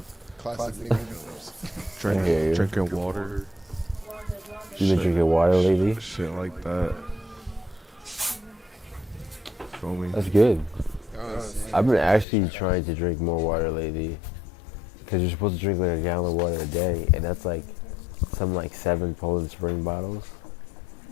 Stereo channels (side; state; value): right; drops out; at 12.2 s